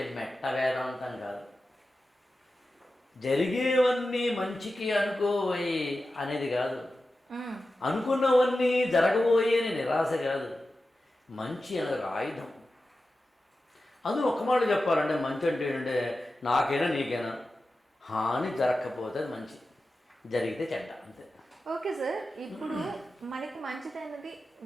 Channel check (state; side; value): normal; both; correlation 0.93